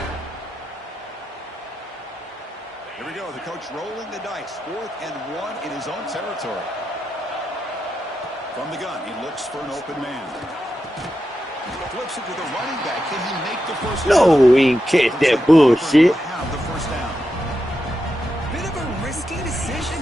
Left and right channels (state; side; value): normal; both; correlation 0.88